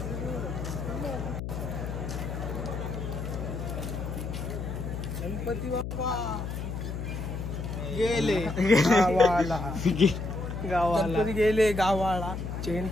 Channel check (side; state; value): left; noise; hum, 5 dB below the sound